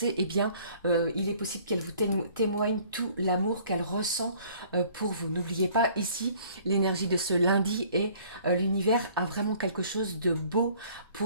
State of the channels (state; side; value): inverted; both; correlation -0.55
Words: eh bien il est possible qu'elle vous témoigne tout l'amour qu'elle ressent pour vous. N'oubliez pas ici l'énergie de ce lundi, et l'univers a vraiment quelque chose de beau